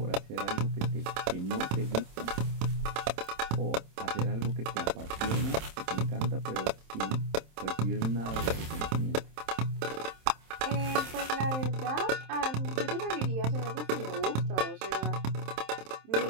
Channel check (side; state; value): left; late; 27 ms